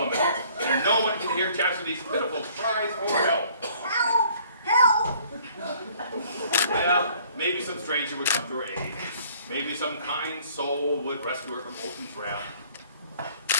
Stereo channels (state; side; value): inverted; both; correlation -0.57